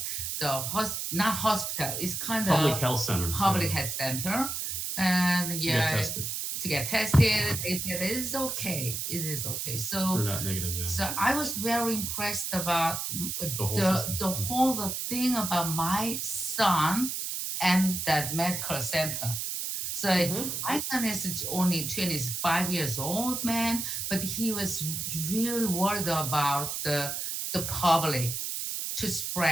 not hospital, it's kind of public health center, and to get tested. They said it is okay. So they're not negative. Yeah. So I was very impressed about the whole thing about my son and that medical center. So my son is only 25 years old, man, but he was really worried about the public to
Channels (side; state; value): right; noise; hiss, 3 dB below the sound